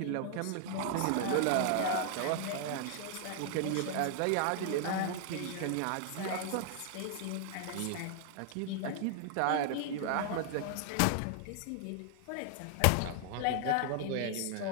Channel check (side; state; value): both; different; correlation 0.00